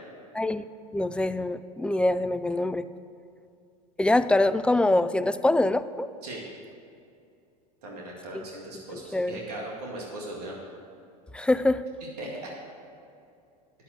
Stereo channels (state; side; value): normal; both; correlation 0.91